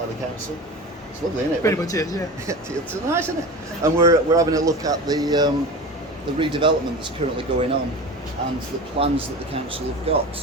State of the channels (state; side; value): normal; both; correlation 0.31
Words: the council. It's lovely, isn't it? Pretty much is, yeah. It's nice, isn't it? And we're having a look at the redevelopment that's currently going on and the plans that the council have